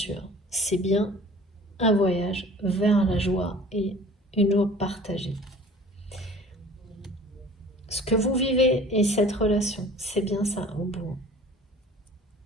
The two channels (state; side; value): normal; both; correlation 0.46